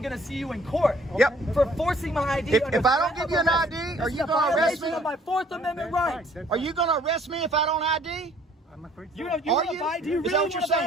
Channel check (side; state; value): both; normal; correlation 0.59